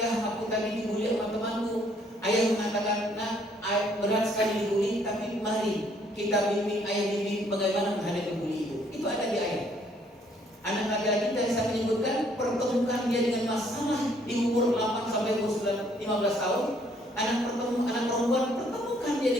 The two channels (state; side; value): normal; both; correlation 0.65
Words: "Ya, aku tadi dibully sama temanku." Ayah mengatakan, "Nak, berat sekali dibully, tapi mari kita bimbing, ayah bimbing bagaimana menghadapi bully itu." Itu ada di ayah. Anak laki-laki tadi saya menyebutkan pertemukan dia dengan masalah di umur 8 sampai umur 15 tahun. Anak perempuan pertemukan dia